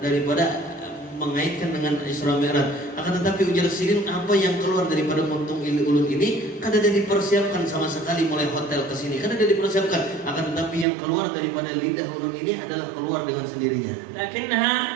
daripada mengaitkan dengan Isra Mi'raj. Akan tetapi ujar sirin apa yang keluar daripada muntung ulun ini kada ada dipersiapkan sama sekali mulai hotel ke sini, kada ada dipersiapkan. Akan tetapi yang keluar daripada lidah ulun ini adalah keluar dengan sendirinya. Lakinnaha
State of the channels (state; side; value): drops out; left; at 10.9 s